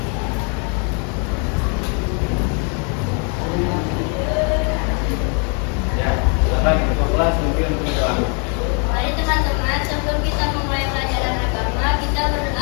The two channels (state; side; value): quieter; right; 38.5 dB